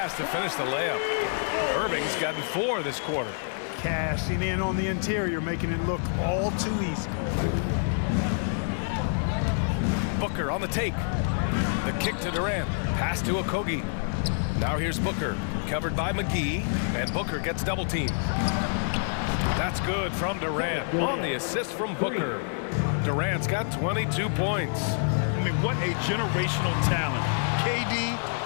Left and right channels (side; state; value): right; silent; 60 dB below the other